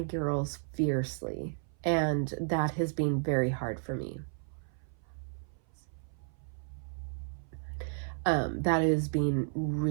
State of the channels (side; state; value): left; silent; 56 dB below the other